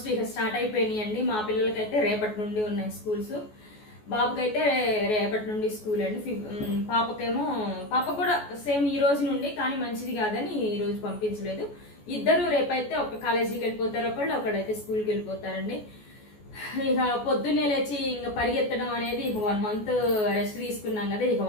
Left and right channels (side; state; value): right; late; 14 ms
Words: ఇక స్టార్ట్ అయిపోయినాయి అండి. మా పిల్లలకైతే రేపటి నుండి ఉన్నాయి స్కూల్స్. బాబుకైతే రేపటి నుండి స్కూల్ అండి. పాప కూడా సేమ్ ఈ రోజు నుండి, కానీ మంచిది కాదని ఈ రోజు పంపించలేదు. ఇద్దరు రేపైతే ఒక కాలేజీకి వెళ్ళిపోతారు, ఒకళ్ళైతే స్కూల్కి వెళ్ళిపోతారండి. ఇక పొద్దున్నే లేచి ఇంకా పరిగెత్తడం అనేది ఇక 1 month రెస్ట్ తీసుకున్నాం కదా, ఇక